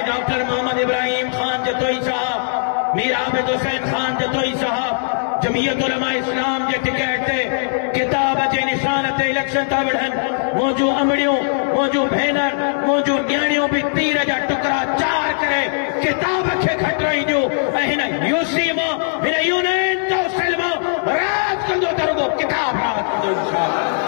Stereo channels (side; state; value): right; silent; digital silence